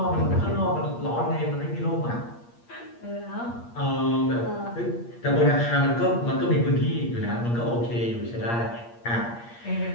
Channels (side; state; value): right; late; 8.5 ms